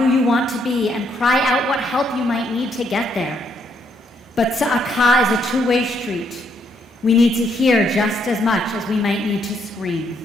you want to be and cry out what help you might need to get there. But tza'aka is a two-way street. We need to hear just as much as we might need to scream.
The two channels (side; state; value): both; normal; correlation 0.73